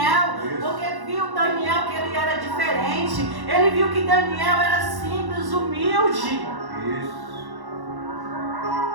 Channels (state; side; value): late; left; 1.1 ms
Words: porque viu Daniel que ele era diferente. Ele viu que Daniel era simples, humilde.